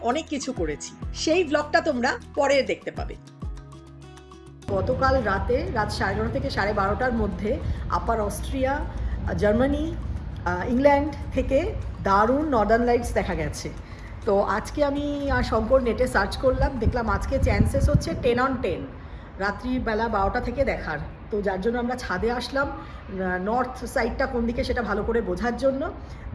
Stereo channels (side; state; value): both; identical; correlation 1.00